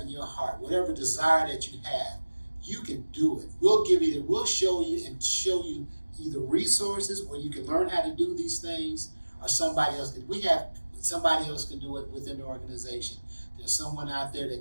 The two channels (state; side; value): inverted; both; correlation -1.00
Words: in your heart, whatever desire that you have, you can do it. We'll show you either resources where you can learn how to do these things, or somebody else can do it within the organization. There's someone out there